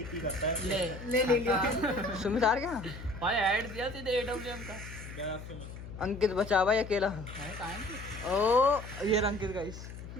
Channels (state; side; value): noise; left; hum, 12 dB below the sound